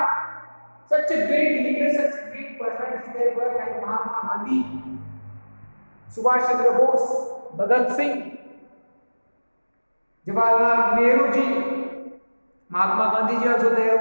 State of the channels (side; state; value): both; inverted; correlation -1.00